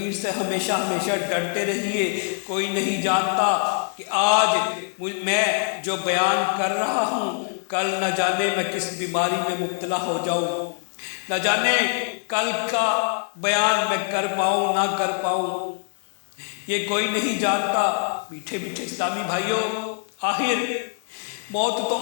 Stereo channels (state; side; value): silent; right; digital silence